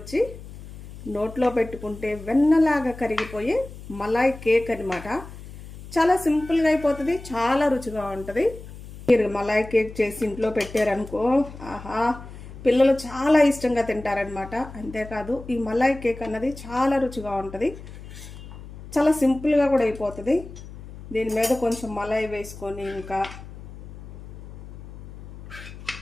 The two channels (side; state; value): left; noise; hum, 15 dB below the sound